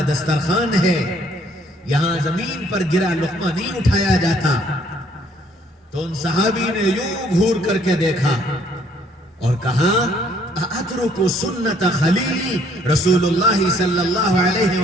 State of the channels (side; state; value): both; normal; correlation 0.64